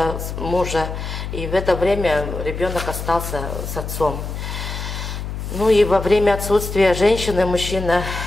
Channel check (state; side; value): noise; left; hum, 6 dB below the sound